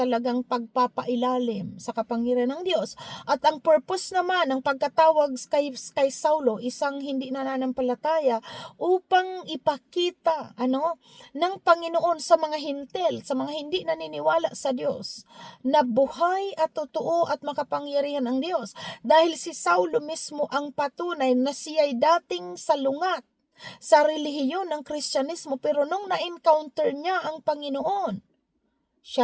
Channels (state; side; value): identical; both; correlation 1.00